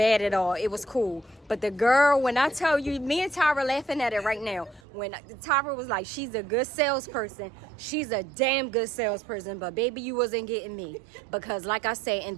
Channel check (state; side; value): drops out; left; at 4.8 s